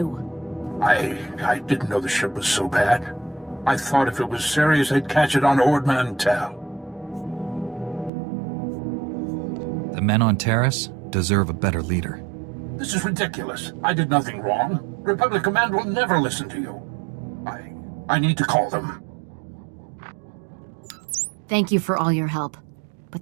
I didn't know the ship was so bad. I thought if it was serious, they'd catch it on Ord Mantell. The men on Terrace deserve a better leader. This is ridiculous. I did nothing wrong. Republic Command will never listen to you. I need to call them. Thank you for all your help.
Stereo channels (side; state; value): left; drops out; at 8.1 s